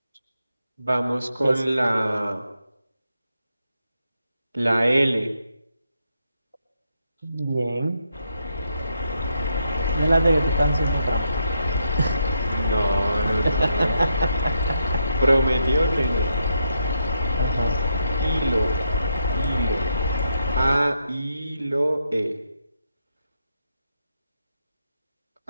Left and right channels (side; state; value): both; inverted; correlation -0.81